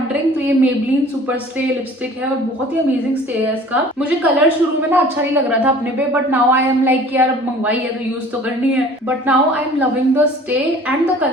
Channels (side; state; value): both; normal; correlation 0.48